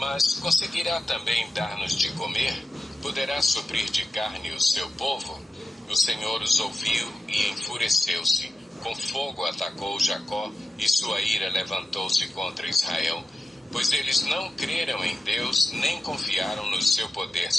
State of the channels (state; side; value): normal; both; correlation 0.90